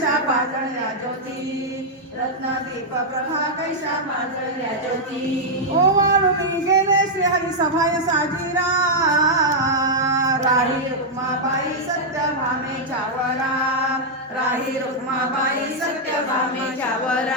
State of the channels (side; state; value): both; normal; correlation -0.04